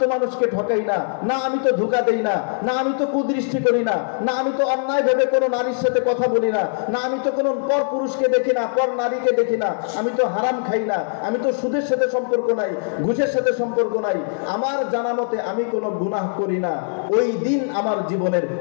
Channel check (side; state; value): right; silent; digital silence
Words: তো মানুষকে ঠকাই না, না আমি তো ধোঁকা দেই না, না আমি তো কুদৃষ্টি করি না, না আমি তো অন্যায় ভেবে কোনো নারীর সাথে কথা বলি না, না আমি তো কোনো পর পুরুষকে দেখি না, পর নারীকে দেখি না, আমি তো হারাম খাই না, আমি তো সুদের সাথে সম্পর্ক নাই, ঘুষের সাথে সম্পর্ক নাই, আমার জানা মতে আমি কোনো গুনাহ করি না। ওই দিন আমার জীবনের